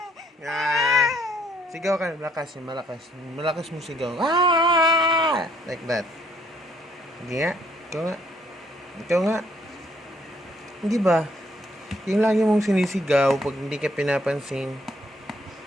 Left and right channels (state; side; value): normal; both; correlation 0.66